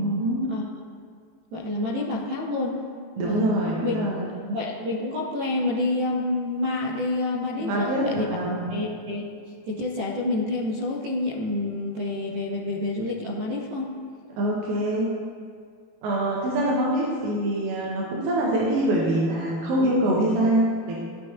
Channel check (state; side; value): late; left; 18 ms